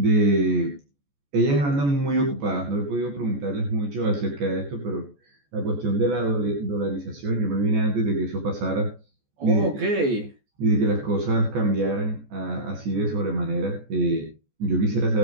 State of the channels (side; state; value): left; late; 14 ms